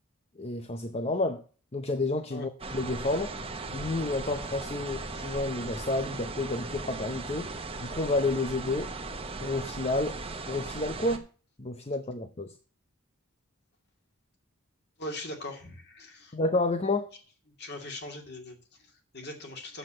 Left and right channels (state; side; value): normal; both; correlation 0.32